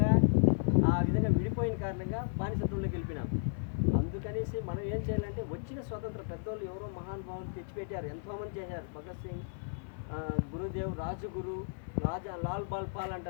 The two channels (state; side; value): silent; right; 55 dB below the other